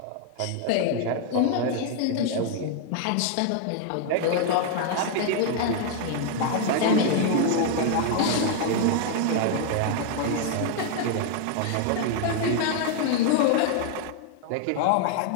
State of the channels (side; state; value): both; different; correlation 0.00